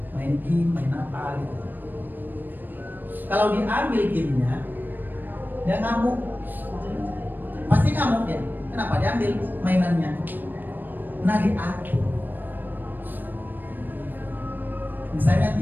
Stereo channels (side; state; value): left; late; 0.091 ms